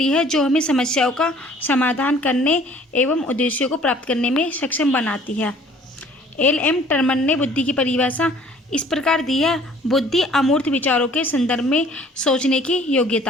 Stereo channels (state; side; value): normal; both; correlation 0.54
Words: है जो हमें समस्याओं का समाधान करने एवं उद्देश्यों को प्राप्त करने में सक्षम बनाती है। एल.एम. टर्मन ने बुद्धि की परिभाषा इस प्रकार दी है: बुद्धि अमूर्त विचारों के संदर्भ में सोचने की